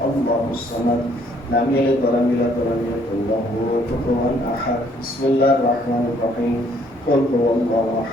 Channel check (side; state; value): both; normal; correlation 0.64